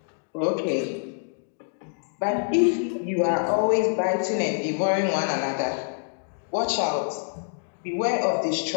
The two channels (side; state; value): right; silent; digital silence